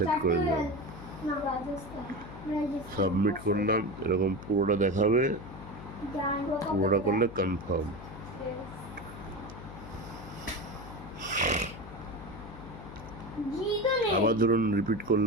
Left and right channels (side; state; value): left; noise; hum, 13 dB below the sound